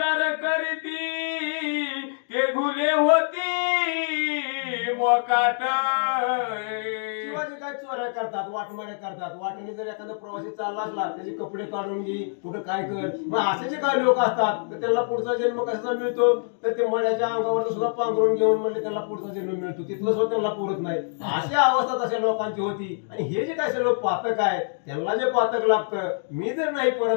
करीती ते घुले होती मोकाट. किंवा जे काय चोऱ्या करतात वाटमाड्या करतात वाटेने जर एखादा प्रवासी चालला असला त्याचे कपडे काढून घे कुठं काय कर मग असे जे काही लोक असतात तर त्यांना पुढचा जन्म कसा मिळतो तर ते मड्याच्या अंगावर सुद्धा पांघरून घेऊन म्हणले त्यांना पुढचा जन्म मिळतो तिथलं सुद्धा त्यांना पुरत नाही अशा अवस्था तशा लोकांची होती. आणि हे जे काय सर्व पातक आहे त्यांना जे पातक लागतं मी जर नाही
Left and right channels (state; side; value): silent; right; digital silence